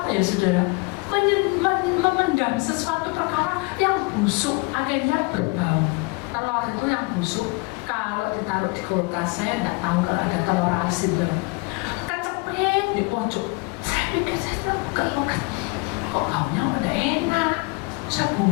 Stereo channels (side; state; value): right; quieter; 27.7 dB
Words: ya saudara memendam sesuatu perkara yang busuk akhirnya berbau. Telur itu yang busuk kalau ditaruh di kulkas, saya nggak tahu kalau ada telur asin kecepit di pojok. Saya pikir saya buka kok baunya udah enak, saya